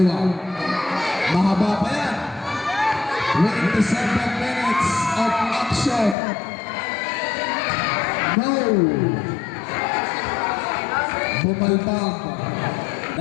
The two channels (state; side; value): drops out; right; at 6.2 s